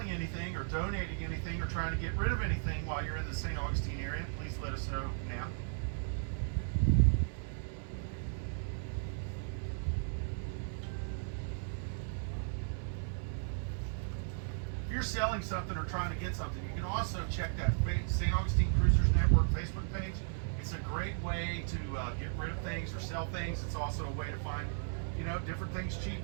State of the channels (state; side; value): silent; left; 54 dB below the other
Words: anything or donating anything or trying to get rid of anything while you're in the St. Augustine area? Please let us know now. If you're selling something or trying to get something, you can also check that St. Augustine Cruisers Network Facebook page. It's a great way to get rid of things or sell things. It's also a way to find, different things cheap.